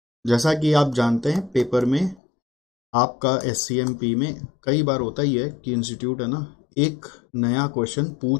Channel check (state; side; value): drops out; right; at 2.2 s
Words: जैसा कि आप जानते हैं पेपर में आपका एससीएमपी में कई बार होता ही है कि इंस्टीट्यूट है ना एक नया क्वेश्चन